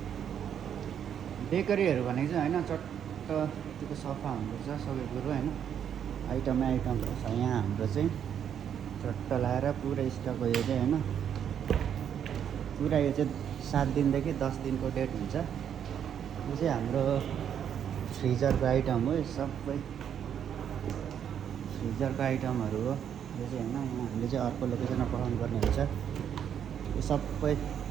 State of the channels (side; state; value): left; quieter; 8.8 dB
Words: बेकरीहरू भनेको चाहिँ होइन चट्ट यत्तिको सफा हुनुपर्छ सबै कुरो होइन। आइटमहरू छ यहाँ हाम्रो चाहिँ चट्ट लाएर पुरा स्टक हो यो चाहिँ होइन। पुरा यो चाहिँ 7 दिनदेखि 10 दिनको डेट हुन्छ। यो चाहिँ हाम्रो फ्रिजरको आइटम हो। यो सबै फ्रिजरको आइटमहरू हो यो चाहिँ होइन। हामीले चाहिँ अर्को लोकेसनमा पठाउनु पर्ने हुन्छ। यो सबै